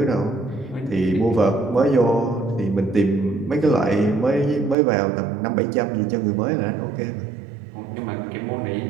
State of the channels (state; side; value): drops out; left; at 4.8 s